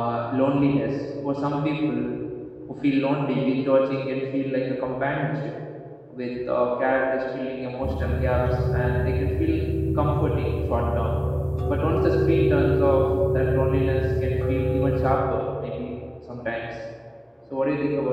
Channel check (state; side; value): identical; both; correlation 1.00